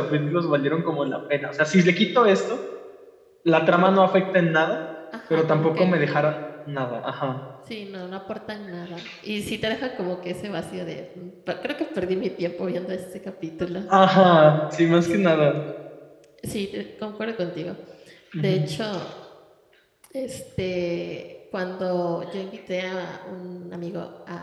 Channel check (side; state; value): both; identical; correlation 1.00